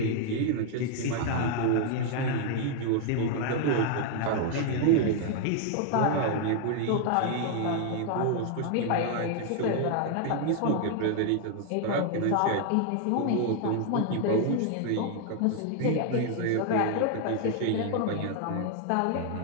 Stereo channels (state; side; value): different; both; correlation 0.00